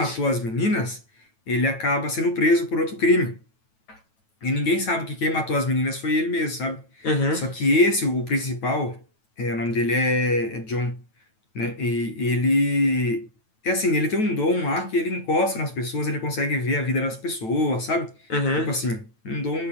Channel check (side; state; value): right; late; 9.1 ms